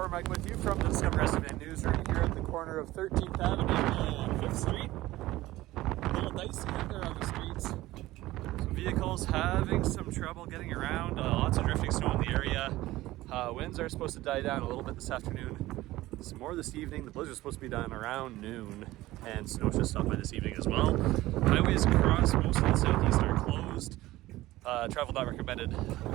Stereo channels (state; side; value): quieter; left; 17.2 dB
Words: Mike with you from the Discover Estevan newsroom here at the corner of 13th Avenue and 5th Street. A little dicey out there on the streets. Some vehicles having some trouble getting around. Lots of drifting snow in the area. Winds are supposed to die down a little bit this afternoon. Some more this evening. The blizzard is supposed to be done around noon, and snow should stop by this evening as well. Highways across most of the southeast are closed. Travel not recommended